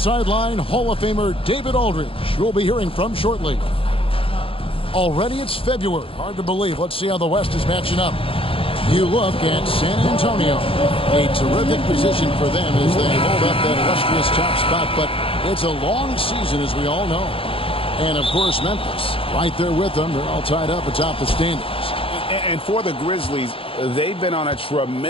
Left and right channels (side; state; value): right; late; 0.27 ms